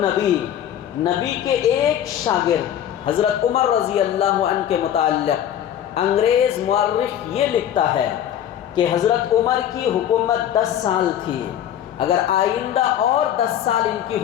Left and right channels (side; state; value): right; quieter; 10.5 dB